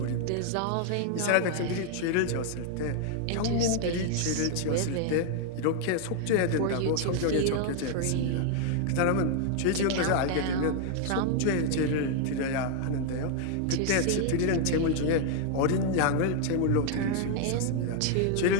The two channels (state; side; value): different; both; correlation 0.00